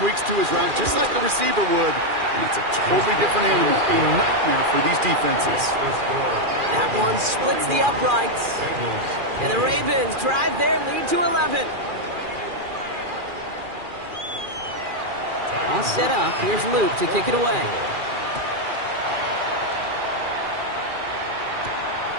to his route just like a receiver would, and it's a totally different animal, a nightmare for these defenses. That one splits the uprights, and the Ravens drive their lead to 11. All set up. Here's Luke to kick it away.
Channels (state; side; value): late; left; 2.4 ms